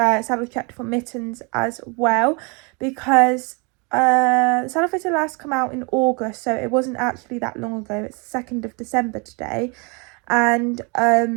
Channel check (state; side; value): quieter; left; 31.6 dB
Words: checked for Mittens as well, because the saddle fitter last come out in August, so it wasn't actually that long ago. It's the 2nd of December today, and